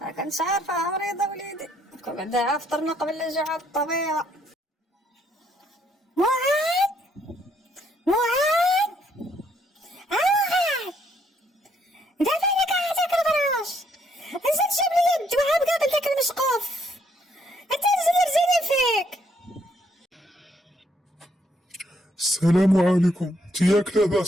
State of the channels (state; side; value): normal; both; correlation 0.71